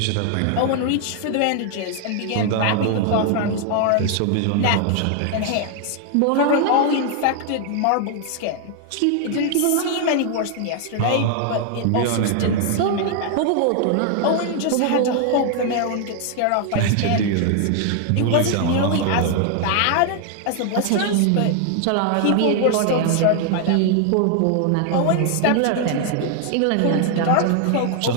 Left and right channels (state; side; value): different; both; correlation 0.00